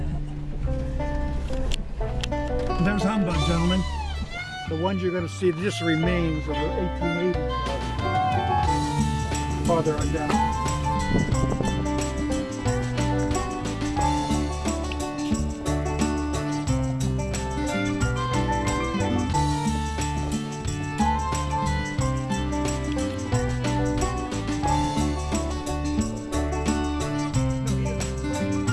There's Humbug, gentlemen. The ones you're going to see, just remains of the 1880s. Farther on down.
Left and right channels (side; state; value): both; identical; correlation 1.00